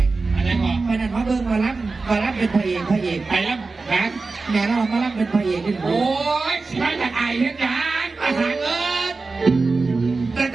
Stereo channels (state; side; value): quieter; left; 3.9 dB